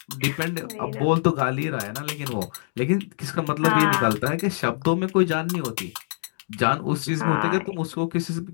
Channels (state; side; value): silent; right; digital silence